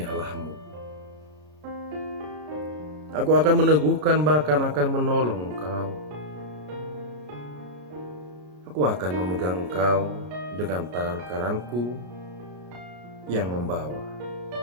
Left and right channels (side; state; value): left; late; 33 ms